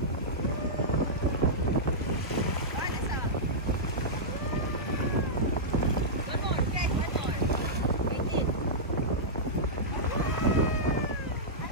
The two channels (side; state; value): both; normal; correlation -0.11